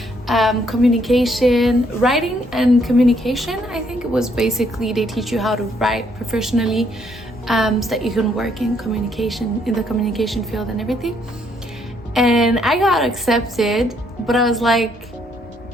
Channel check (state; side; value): normal; both; correlation 0.70